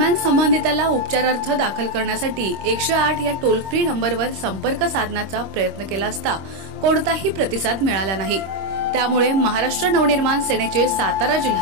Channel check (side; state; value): left; late; 26 ms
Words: संबंधिताला उपचारार्थ दाखल करण्यासाठी 108 या टोल फ्री नंबरवर संपर्क साधण्याचा प्रयत्न केला असता कोणताही प्रतिसाद मिळाला नाही। त्यामुळे महाराष्ट्र नवनिर्माण सेनेचे सातारा